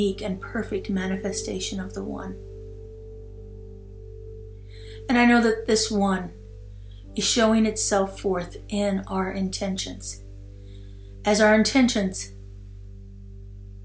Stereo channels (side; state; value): both; identical; correlation 1.00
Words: and perfect manifestation of the one. And I know that this one is showing itself forth in our intentions. As our intentions